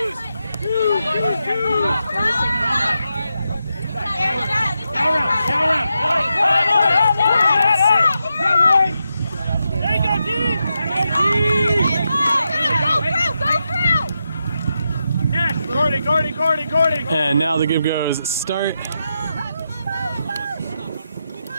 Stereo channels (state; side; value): inverted; both; correlation -0.86